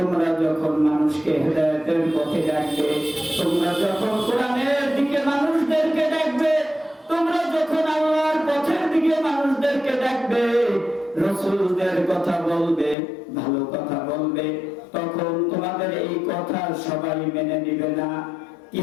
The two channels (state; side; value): drops out; right; at 13.0 s